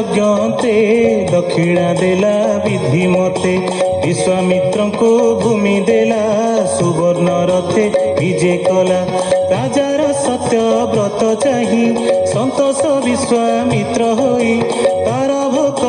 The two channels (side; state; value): both; identical; correlation 1.00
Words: दक्षिणा देला विधि मते विश्वामित्र को भूमि देला सुवर्ण रथे विजे कला राजार सत्य व्रत चाही संतोष विश्वामित्र होई तार